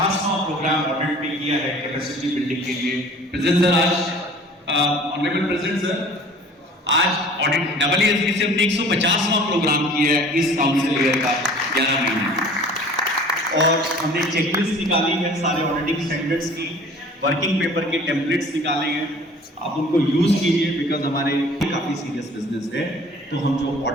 प्रोग्राम ऑडिट में किया है कैपेसिटी बिल्डिंग के लिए। प्रेजेंट सर, आज ऑनरेबल प्रेसिडेंट सर, आज ऑडिट AASB से हमने 150वां प्रोग्राम किया है इस काउंसिल ईयर का 11 महीने, और हमने चेकलिस्ट निकाली है सारे ऑडिटिंग स्टैंडर्ड्स की, वर्किंग पेपर के टेम्पलेट्स निकाले हैं। आप उनको यूज कीजिए, बिकॉज हमारे काफी सीरियस बिजनेस है, तो हम जो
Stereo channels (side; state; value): both; normal; correlation 0.48